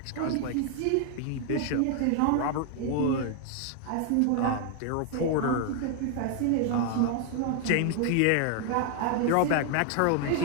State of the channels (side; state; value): both; different; correlation 0.00